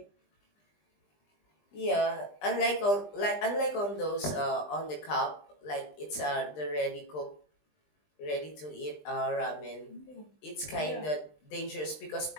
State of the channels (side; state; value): right; late; 20 ms